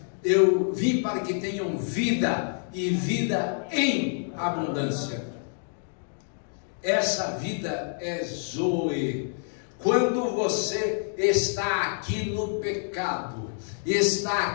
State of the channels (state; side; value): silent; right; 60 dB below the other